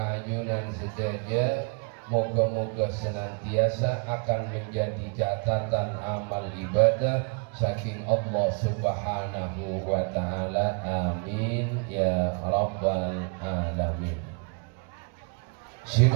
ajunan sedaja, moga-moga senantiasa akan menjadi catatan amal ibadah saking Allah Subhanahu wa ta'ala. Amin ya rabbal alamin. Si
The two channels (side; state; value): left; quieter; 35.8 dB